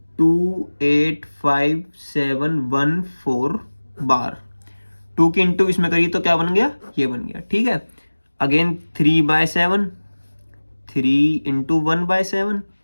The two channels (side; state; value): both; inverted; correlation -1.00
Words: बार। 2 की इंटू इसमें करिए तो क्या बन गया, ये बन गया। ठीक है, अगेन 3/7, 3 इंटू 1/7,